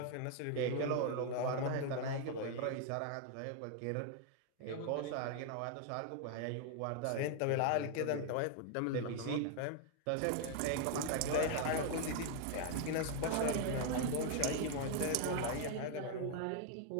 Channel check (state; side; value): different; both; correlation 0.00